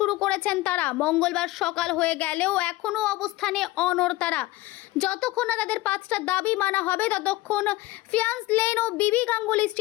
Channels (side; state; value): right; quieter; 18.2 dB